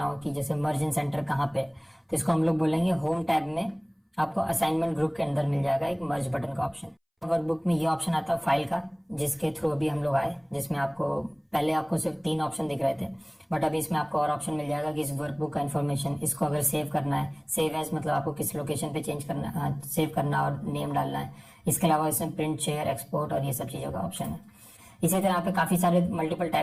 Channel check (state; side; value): identical; both; correlation 1.00